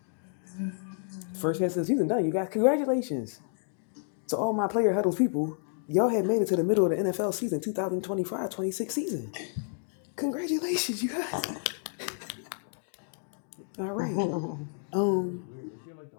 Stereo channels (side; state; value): right; silent; digital silence